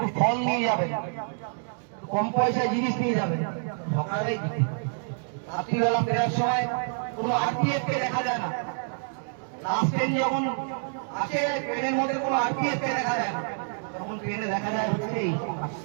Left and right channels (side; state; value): left; silent; 60 dB below the other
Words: ফল নিয়ে যাবে, কম পয়সায় জিনিস নিয়ে যাবে, সকালেই রাত্রিবেলা ফেরার সময় কোনো আরপিএফ কে দেখা যায় না। লাস্ট ট্রেন যখন আসে ট্রেনের মধ্যে কোনো আরপিএফ কে দেখা যায় না, তখন ট্রেনে দেখা যায় হচ্ছে এই।